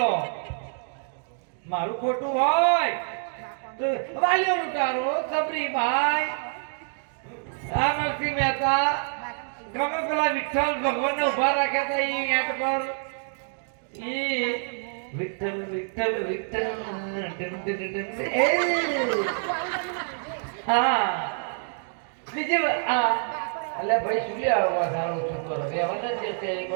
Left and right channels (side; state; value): left; silent; digital silence